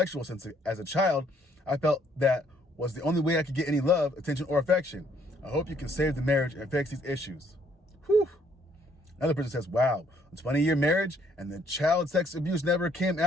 since, as a child, I felt that was the only way I could get any love, attention, or affection. I hope you can save the marriage and fix these issues. Whew. Another person says, wow, a 20-year marriage and the child sex abuse never came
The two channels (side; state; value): both; normal; correlation 0.66